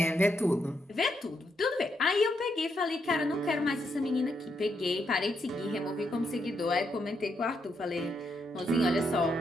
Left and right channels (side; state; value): both; normal; correlation 0.79